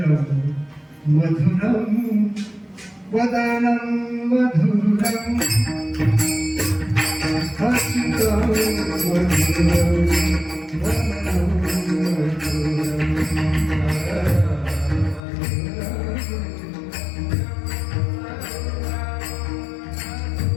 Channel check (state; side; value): drops out; right; at 15.2 s